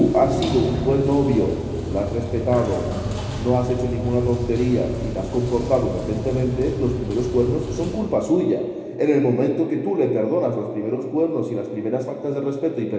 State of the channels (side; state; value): both; identical; correlation 1.00